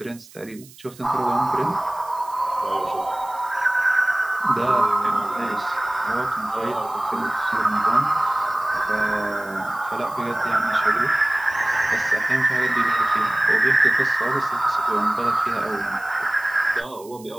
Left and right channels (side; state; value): right; noise; hiss, 22 dB below the sound